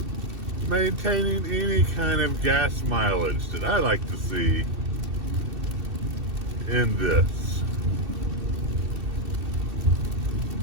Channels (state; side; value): late; left; 2.7 ms